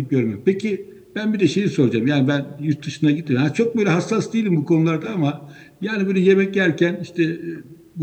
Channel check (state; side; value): identical; both; correlation 1.00